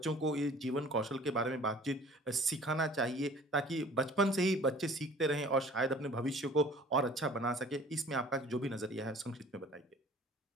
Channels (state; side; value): normal; both; correlation 0.48